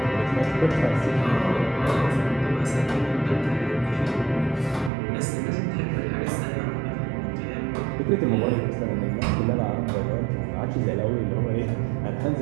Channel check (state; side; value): drops out; left; at 4.9 s